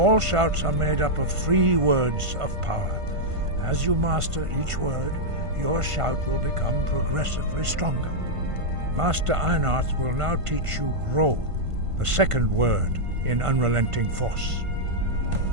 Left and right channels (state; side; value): late; left; 1.5 ms